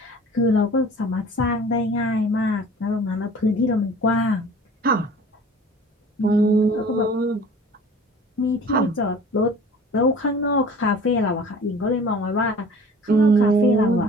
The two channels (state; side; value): normal; both; correlation 0.45